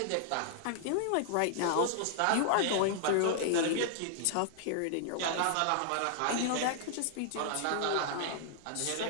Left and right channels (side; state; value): both; different; correlation -0.01